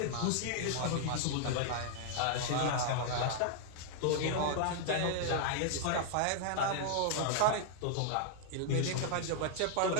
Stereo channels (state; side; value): different; both; correlation -0.01